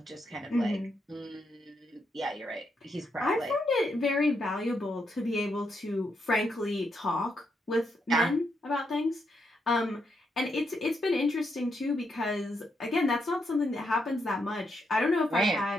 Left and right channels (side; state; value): both; normal; correlation 0.79